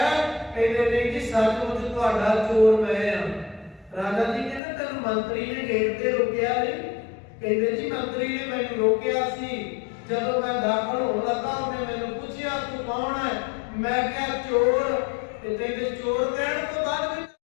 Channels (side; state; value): right; drops out; at 4.6 s